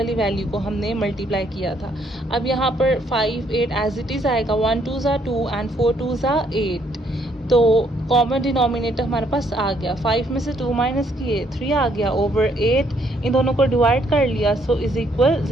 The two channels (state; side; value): normal; both; correlation 0.69